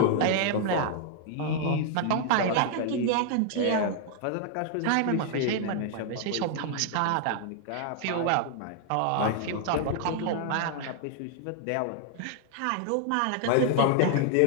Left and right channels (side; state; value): both; different; correlation 0.00